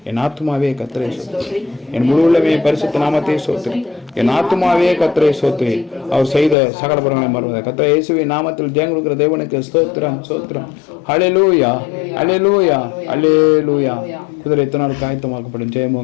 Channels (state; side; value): drops out; right; at 6.6 s